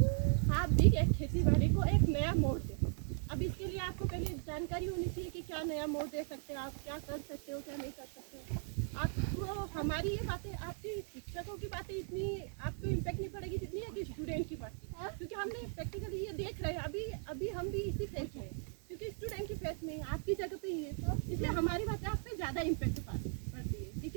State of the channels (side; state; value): left; silent; 52 dB below the other